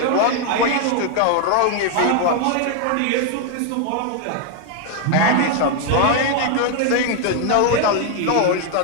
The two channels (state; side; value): different; both; correlation 0.00